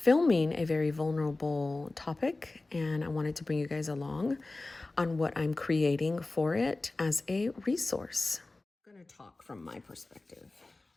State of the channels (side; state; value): right; quieter; 3.2 dB